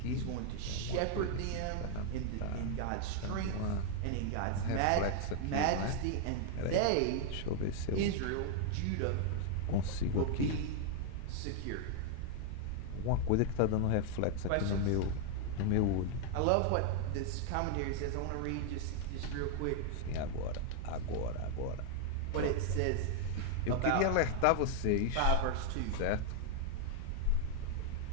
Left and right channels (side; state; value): both; different; correlation 0.00